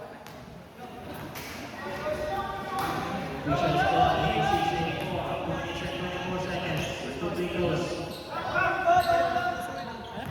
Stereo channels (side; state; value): both; identical; correlation 1.00